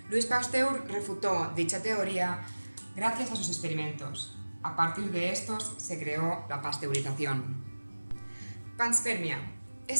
Louis Pasteur refutó dicha teoría gracias a sus experimentos. A partir de estos se creó la pasteurización. Panspermia.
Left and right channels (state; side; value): inverted; both; correlation -1.00